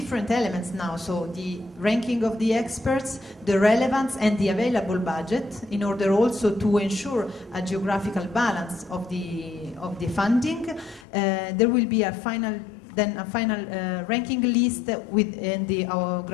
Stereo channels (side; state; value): right; drops out; at 11.1 s